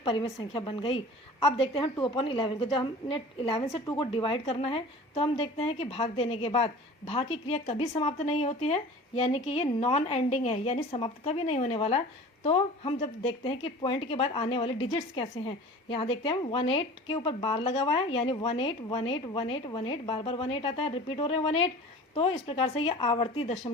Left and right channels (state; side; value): normal; both; correlation 0.40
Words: परिमेय संख्या बन गई। अब देखते हैं 2/11 को, जब हमने 11 से 2 को डिवाइड करना है तो हम देखते हैं कि भाग देने के बाद भाग की क्रिया कभी समाप्त नहीं होती है, यानी कि ये नॉन एंडिंग है, यानी समाप्त कभी नहीं होने वाला। तो हम जब देखते हैं कि पॉइंट के बाद आने वाले डिजिट्स कैसे हैं, यहाँ देखते हैं 18 के ऊपर बार लगा हुआ है, यानी 18 18 18 18, बार 18 आता है, रिपीट हो रहे हैं 18, तो इस प्रकार से ये आवर्ती